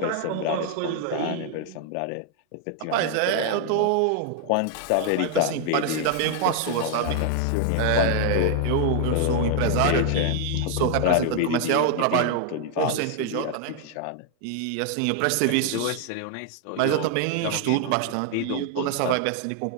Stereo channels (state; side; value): different; both; correlation 0.00